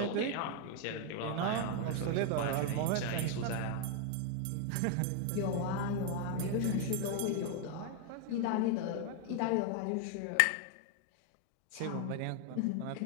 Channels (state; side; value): different; both; correlation 0.00